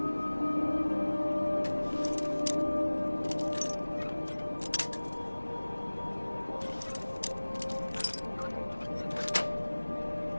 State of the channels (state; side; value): inverted; both; correlation -1.00